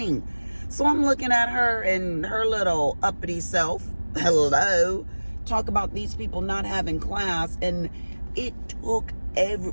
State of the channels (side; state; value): both; inverted; correlation -1.00